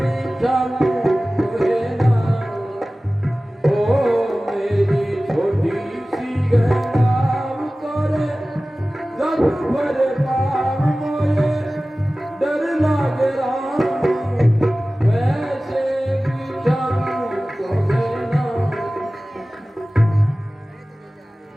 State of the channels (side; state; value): both; normal; correlation 0.97